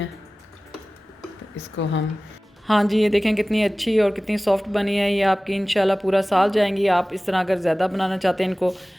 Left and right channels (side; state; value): both; normal; correlation 0.98